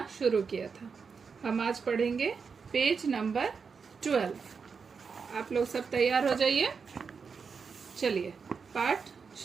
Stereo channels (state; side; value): quieter; left; 5.6 dB